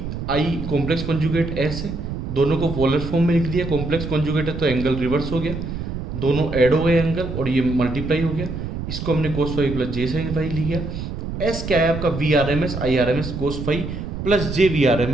I complex conjugate S है, दोनों को पोलर फॉर्म में लिख दिया, कॉम्प्लेक्स कॉन्जुगेट है तो एंगल रिवर्स हो गया, दोनों ऐड हो गए एंगल और ये मल्टीप्लाई हो गया, इसको हमने कोस 5 प्लस जे साइन 5 लिया। एस क्या है आपका V R M S I R M S cos 5 plus J V R M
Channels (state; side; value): noise; right; rumble, 6 dB below the sound